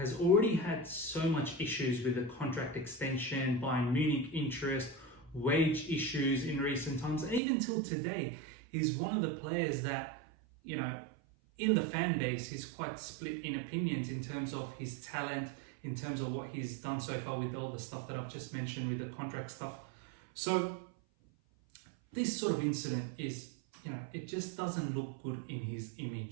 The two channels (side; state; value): left; drops out; at 7.4 s